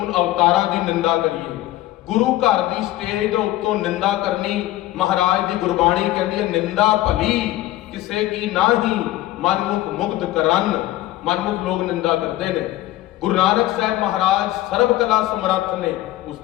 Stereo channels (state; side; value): quieter; right; 15.8 dB